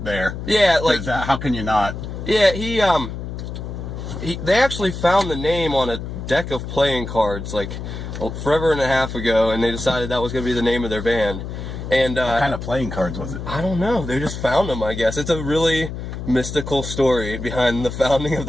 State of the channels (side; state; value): left; noise; hum, 7 dB below the sound